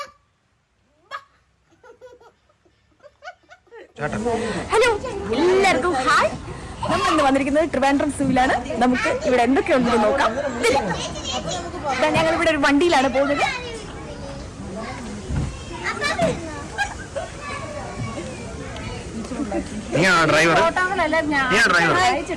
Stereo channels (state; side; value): identical; both; correlation 1.00